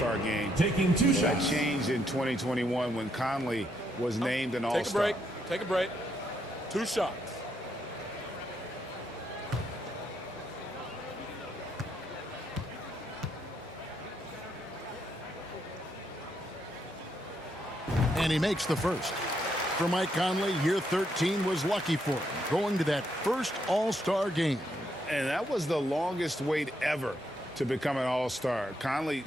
game. Taking 2 That shots. changed in 2021 when Conley was named an All-Star. Take a break. 2 shots. And he makes the first. For Mike Conley, year 13 was lucky for him, going to that first All-Star game. And that was the longest wait ever to become an All-Star. Conley,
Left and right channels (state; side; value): normal; both; correlation 0.76